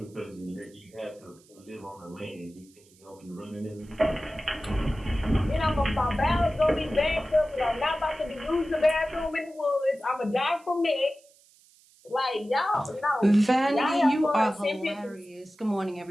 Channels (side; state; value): right; noise; hiss, 29 dB below the sound